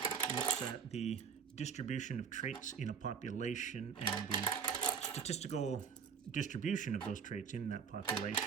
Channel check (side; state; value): left; quieter; 6.4 dB